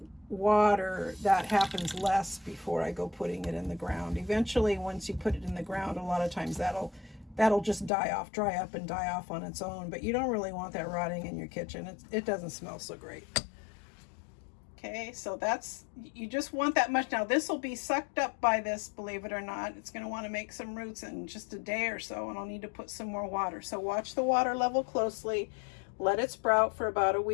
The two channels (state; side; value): drops out; right; at 7.9 s